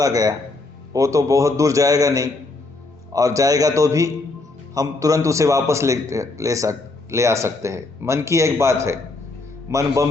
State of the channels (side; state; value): right; quieter; 3.3 dB